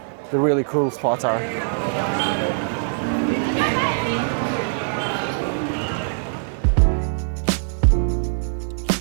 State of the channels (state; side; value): silent; left; digital silence